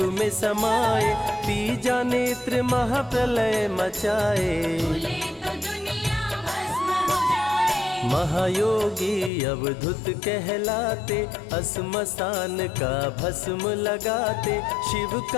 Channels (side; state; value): right; drops out; at 9.3 s